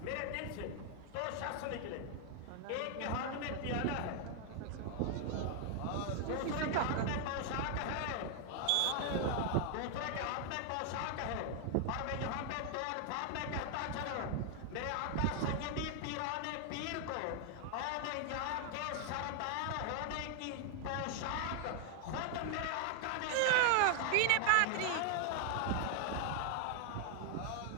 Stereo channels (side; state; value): both; different; correlation 0.00